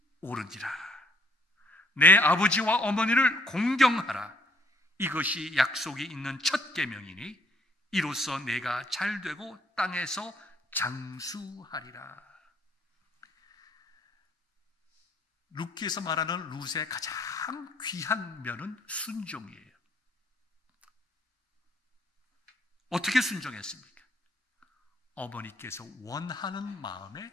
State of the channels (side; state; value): both; normal; correlation 0.65